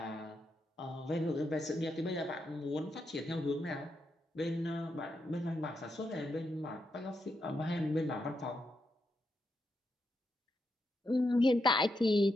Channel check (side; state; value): both; normal; correlation 0.83